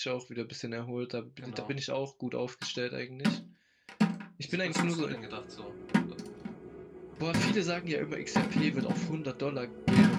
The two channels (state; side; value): identical; both; correlation 1.00